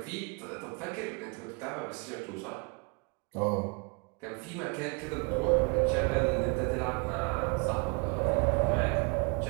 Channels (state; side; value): quieter; left; 33.2 dB